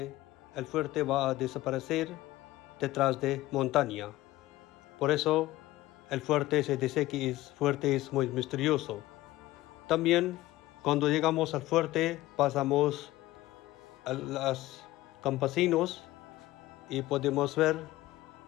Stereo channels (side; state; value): right; quieter; 16.9 dB